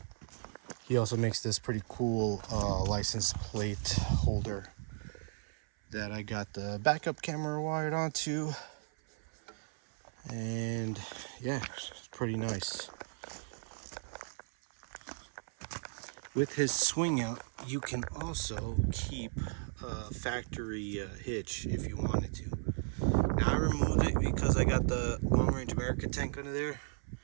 He also makes this pretty cool license plate holder that I got the backup camera wired onto, and yeah, it's pretty nice. With his swing out, you can also keep a factory hitch if you wanted to. Now I removed it because I got the Long Range America tank under there,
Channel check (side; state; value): left; silent; 54 dB below the other